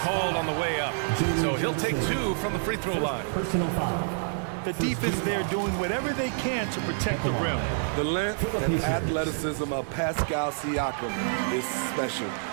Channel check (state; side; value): silent; left; digital silence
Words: called on the way up. So he'll take 2 from the free throw line. The defense there doing whatever they can to protect the rim. The length and athleticism of Pascal Siakam is special.